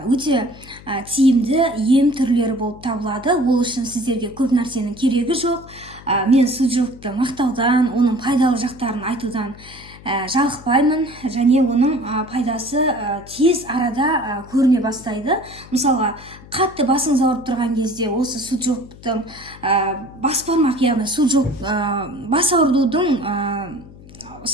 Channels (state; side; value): noise; left; hum, 20 dB below the sound